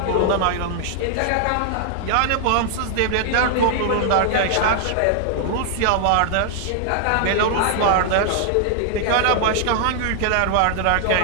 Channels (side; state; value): both; different; correlation 0.00